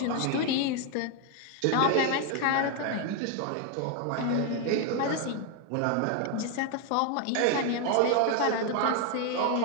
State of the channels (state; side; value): different; both; correlation 0.01